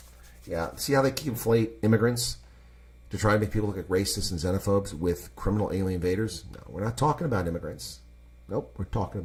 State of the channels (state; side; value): identical; both; correlation 1.00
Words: Yeah. See how they conflate immigrants to try to make people look like racists and xenophobes with criminal alien invaders? No, we're not talking about immigrants. Nope, we're talking